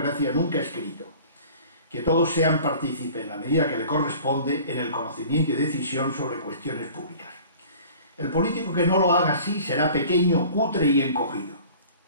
nunca escrito, que todos sean partícipes en la medida que le corresponde en el conocimiento y decisión sobre cuestiones públicas. El político que no lo haga así será pequeño, cutre y encogido.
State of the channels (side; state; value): both; inverted; correlation -0.46